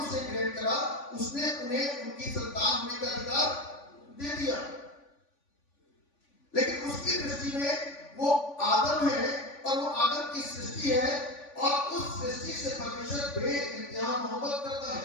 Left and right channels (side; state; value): right; late; 3.5 ms